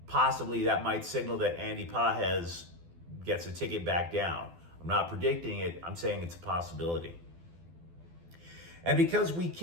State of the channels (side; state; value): left; late; 12 ms